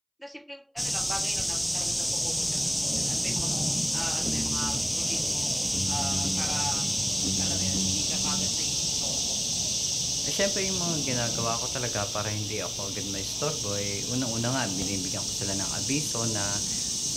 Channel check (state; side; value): identical; both; correlation 1.00